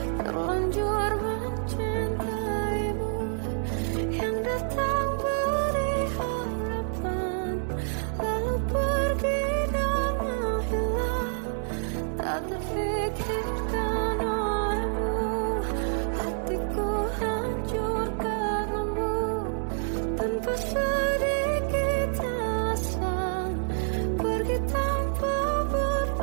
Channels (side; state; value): left; silent; 57 dB below the other